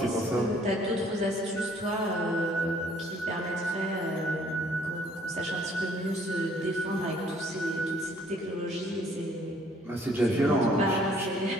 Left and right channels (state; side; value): normal; both; correlation 0.61